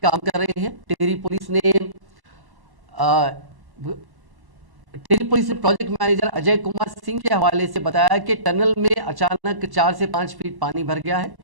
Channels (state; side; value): late; left; 1.1 ms